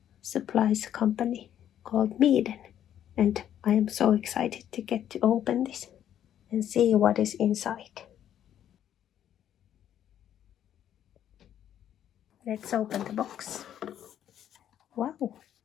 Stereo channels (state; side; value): quieter; right; 10.5 dB